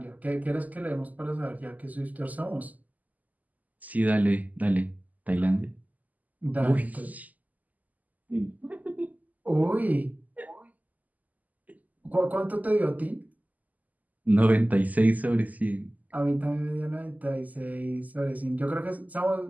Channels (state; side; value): late; left; 0.079 ms